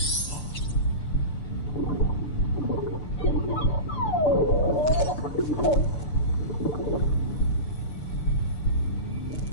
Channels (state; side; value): late; right; 6.8 ms